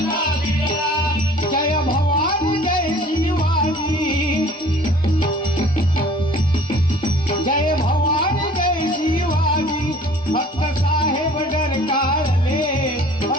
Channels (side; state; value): both; normal; correlation 0.50